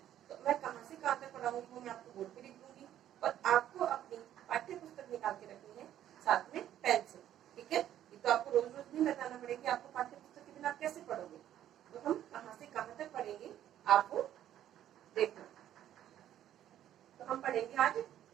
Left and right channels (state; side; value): quieter; left; 11.5 dB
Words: तो मैं कहाँ से कहाँ तक पढ़ाऊंगी वो मैं आपको बोर्ड पे लिख दूंगी और आपको अपनी पाठ्य पुस्तक निकाल के रखनी है साथ में पेन से। ठीक है, ये तो आपको रोज रोज नहीं बताना पड़ेगा, आपको पाठ्य पुस्तक के बिना आप कैसे पढ़ोगे। तो हम कहाँ से कहाँ तक पढ़ेंगे आपको देखना। तो हम पढ़ेंगे आज